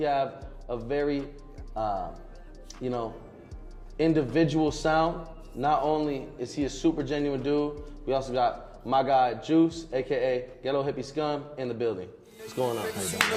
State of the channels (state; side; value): identical; both; correlation 1.00